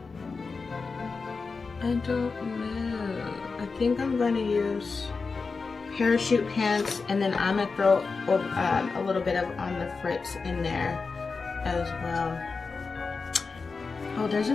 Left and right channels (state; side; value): quieter; right; 4.5 dB